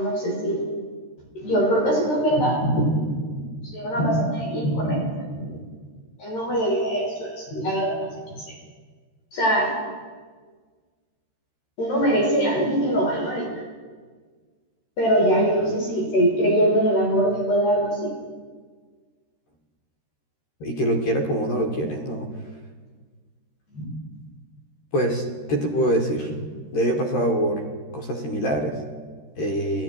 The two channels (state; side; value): late; right; 13 ms